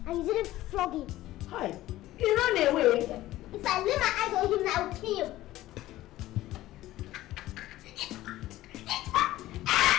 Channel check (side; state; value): right; quieter; 15.7 dB